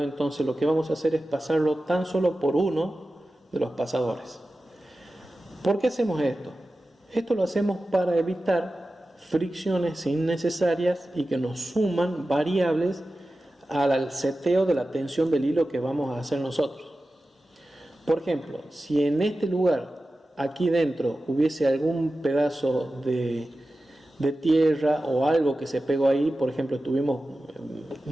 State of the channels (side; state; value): both; normal; correlation 0.94